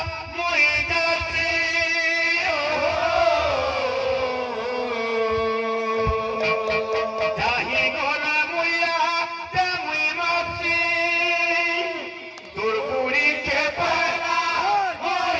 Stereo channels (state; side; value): identical; both; correlation 1.00